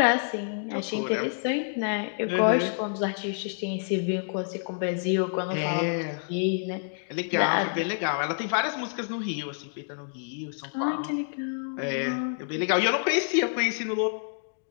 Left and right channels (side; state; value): right; silent; digital silence